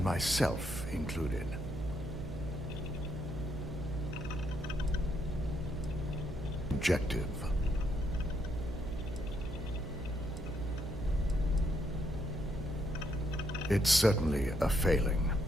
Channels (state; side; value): noise; right; hum, 7 dB below the sound